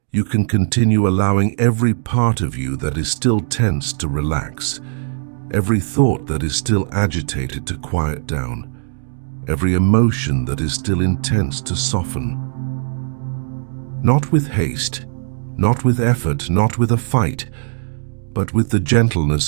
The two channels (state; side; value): silent; left; 67 dB below the other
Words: you can continue allowing every part of you that is still tense to relax, every thought that is still agitated to quiet down, every emotion that is still intense to soften. Not with haste, not with effort, not with a fight, but with the gentleness